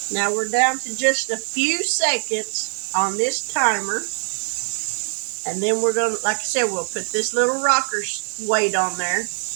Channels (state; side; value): silent; left; 58 dB below the other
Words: Now we're down to just a few seconds on this timer. And then we're going to, like I said, we'll put this little rocker weight on there.